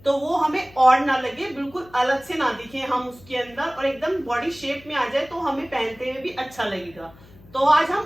तो वो हमें और ना लगे, बिल्कुल अलग से ना दिखे हम उसके अंदर, और एकदम बॉडी शेप में आ जाए तो हमें पहनते हुए भी अच्छा लगेगा। तो आज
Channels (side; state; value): left; noise; hum, 24 dB below the sound